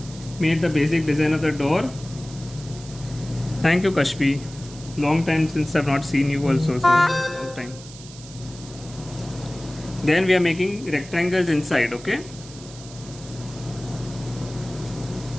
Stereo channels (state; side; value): noise; right; hiss, 17 dB below the sound